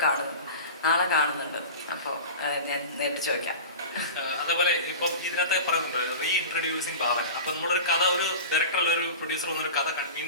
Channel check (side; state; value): both; inverted; correlation -0.31